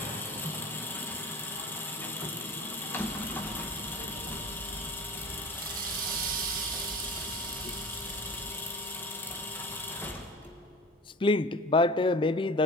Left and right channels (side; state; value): both; normal; correlation 0.37